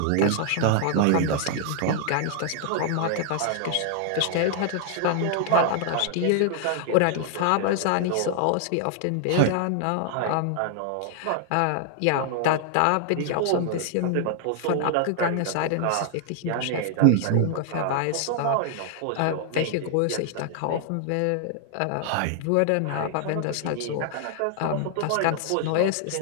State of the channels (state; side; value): different; both; correlation 0.00